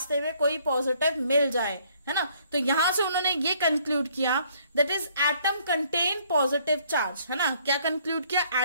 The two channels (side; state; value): both; inverted; correlation -0.64